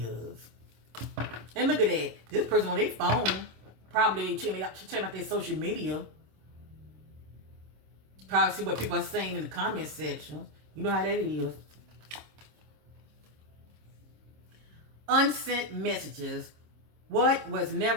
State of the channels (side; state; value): left; late; 26 ms